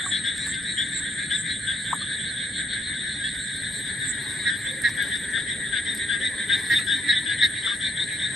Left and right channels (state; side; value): normal; both; correlation 0.73